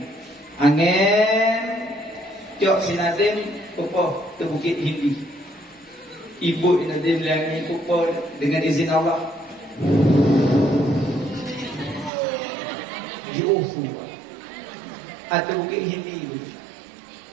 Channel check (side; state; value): left; drops out; at 12.1 s